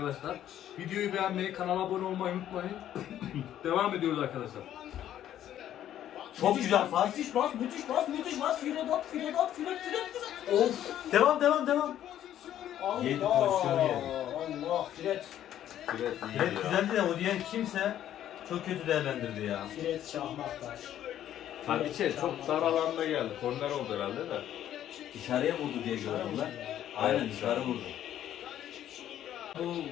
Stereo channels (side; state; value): right; quieter; 11.4 dB